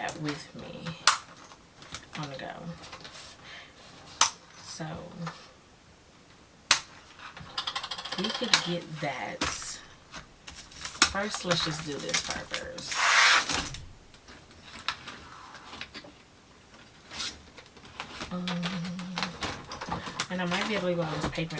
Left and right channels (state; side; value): identical; both; correlation 1.00